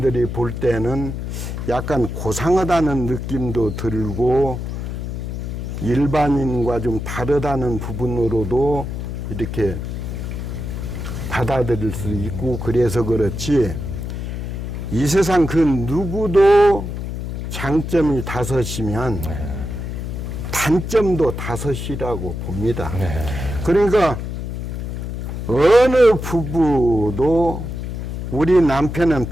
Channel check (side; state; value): left; noise; hum, 5 dB below the sound